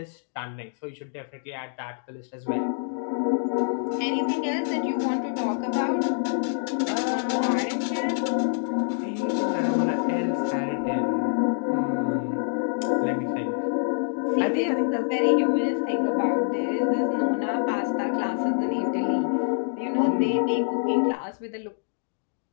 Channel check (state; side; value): silent; right; 61 dB below the other